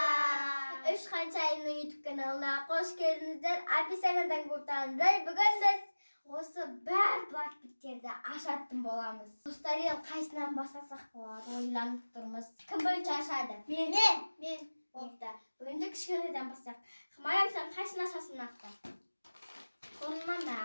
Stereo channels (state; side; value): inverted; both; correlation -1.00